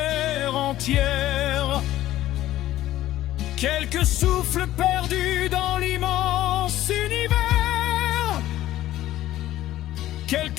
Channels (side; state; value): right; quieter; 14.3 dB